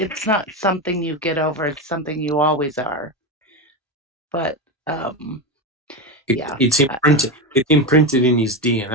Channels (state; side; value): normal; both; correlation 0.16